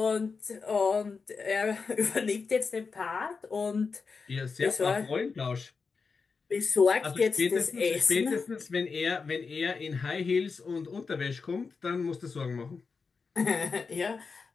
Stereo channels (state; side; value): quieter; right; 4.9 dB